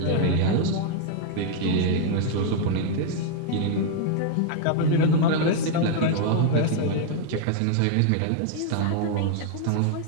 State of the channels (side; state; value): both; different; correlation 0.00